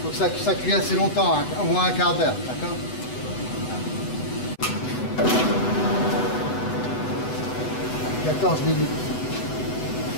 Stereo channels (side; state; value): right; late; 8.0 ms